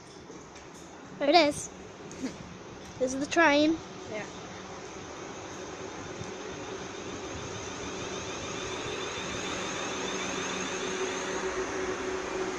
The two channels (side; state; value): both; identical; correlation 1.00